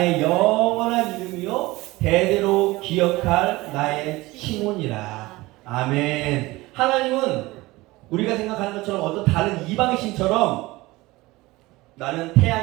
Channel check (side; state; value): left; quieter; 20.3 dB